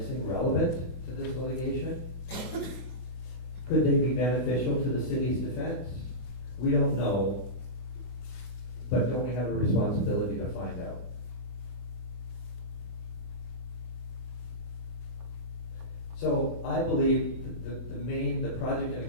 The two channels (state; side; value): late; right; 24 ms